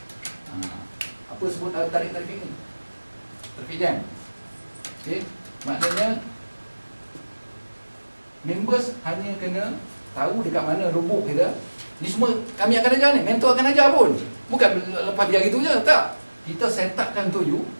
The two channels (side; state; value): both; inverted; correlation -1.00